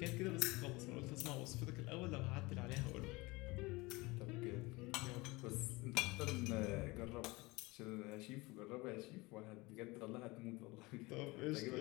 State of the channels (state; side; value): quieter; right; 23.2 dB